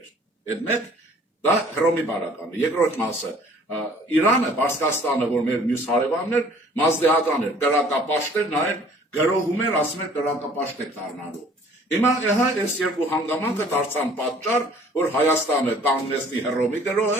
Այդ մեկ դա Հռոմի բարականը, երկրորդ մասը Իրանը, Պարսկաստանը, որ մեր մյուս հարևանն էր, մազդեհական էր, կրակապաշտեր, նա էր գրոհում էր, ասում էր կրակապաշտ եք դառնալու։ Հիմա ահա այս երկու հանգամանքը դարձան պատճառ, որ Հայաստանը կանգնեցնի Հռոմի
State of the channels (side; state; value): both; normal; correlation 0.54